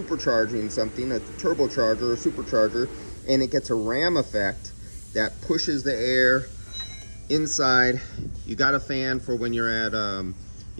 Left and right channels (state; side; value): inverted; both; correlation -1.00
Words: something, a turbocharger or supercharger, and it gets a ram effect that pushes the air inside. You got a fan for when you're at